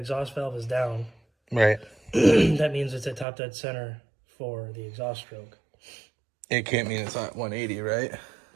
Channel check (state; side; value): drops out; left; at 3.2 s